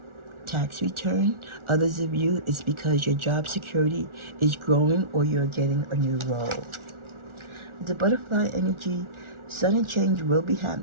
tax return. Others of you, it's because your job security is growing or you're getting a new role. The butterfly energy, sudden change will be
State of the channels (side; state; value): left; late; 1.4 ms